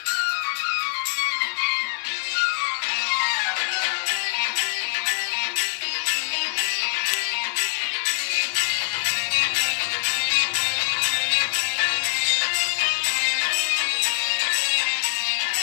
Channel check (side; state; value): right; silent; digital silence